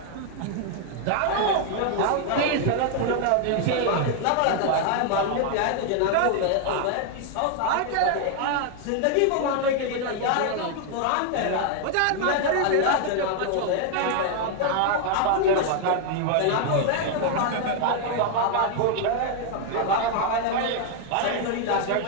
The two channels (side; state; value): both; different; correlation 0.00